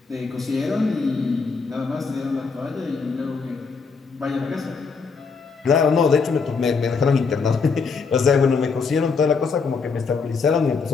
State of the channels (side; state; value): right; quieter; 5.0 dB